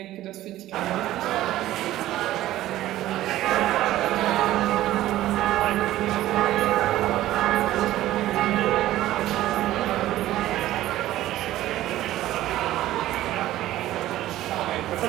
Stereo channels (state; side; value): quieter; left; 14.6 dB